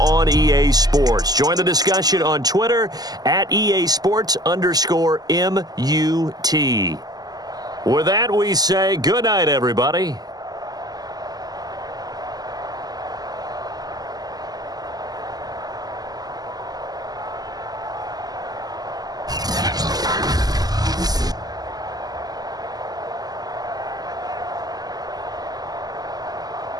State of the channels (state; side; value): late; left; 0.19 ms